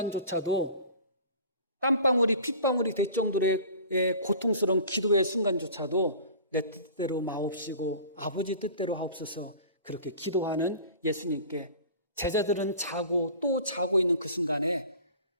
땀방울이 핏방울이 될 정도의 고통스러운 기도의 순간조차도 내 뜻대로 마옵시고 아버지 뜻대로 하옵소서 그렇게 기도하는 예수님께 제자들은 자고 또 자고 있는 그 순간에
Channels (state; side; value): inverted; both; correlation -0.42